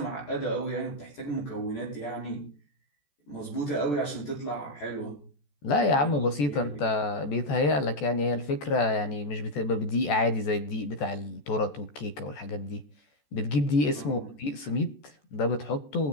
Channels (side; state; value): right; late; 14 ms